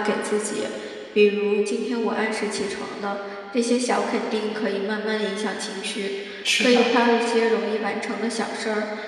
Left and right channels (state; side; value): identical; both; correlation 1.00